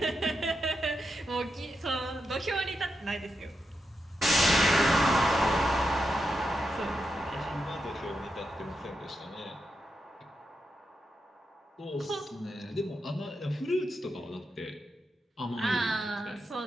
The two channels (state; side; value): normal; both; correlation 0.85